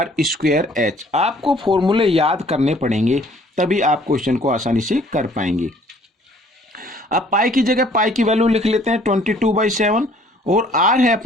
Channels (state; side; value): normal; both; correlation 0.58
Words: आपको फॉर्मूले याद करने पड़ेंगे, तभी आप क्वेश्चन को आसानी से कर पाएंगे। अब पाई की जगह पाई की वैल्यू लिख लेते हैं 22/7, और r है